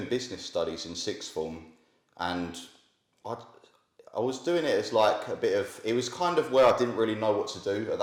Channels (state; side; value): identical; both; correlation 1.00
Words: business studies in sixth form, and I was doing it as like it was kind of where I didn't really know what to do at